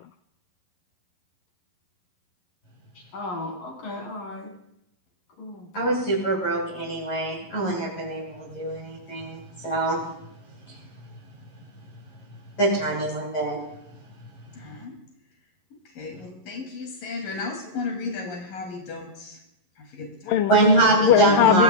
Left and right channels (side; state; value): right; late; 11 ms